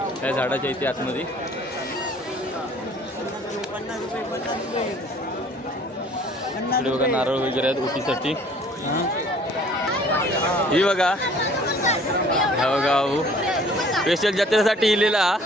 त्या झाडाच्या इथे आतमध्ये. इकडे बघा नारळ वगैरे आहेत ओटीसाठी. ही बघा हा बघा स्पेशल जत्रेसाठी इलेला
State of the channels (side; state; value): both; normal; correlation 0.54